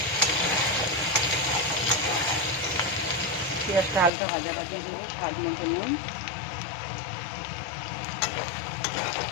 পেঁয়াজটা হালকা ভাজা দেবো, স্বাদ মতো নুন,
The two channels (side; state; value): right; drops out; at 4.1 s